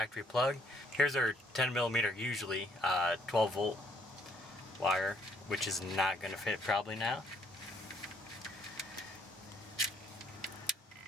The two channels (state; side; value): normal; both; correlation 0.66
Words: plug. Here's our 10mm, usually 12 volt wire, which is not going to fit probably now.